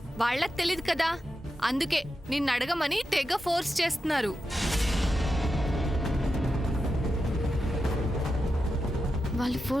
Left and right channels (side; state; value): both; normal; correlation 0.89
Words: వాళ్ళకి తెలియదు కదా. అందుకే నిన్ను అడగమని తెగ ఫోర్స్ చేస్తున్నారు. వాళ్ళు